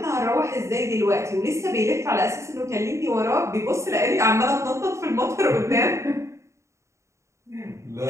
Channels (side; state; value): left; late; 0.14 ms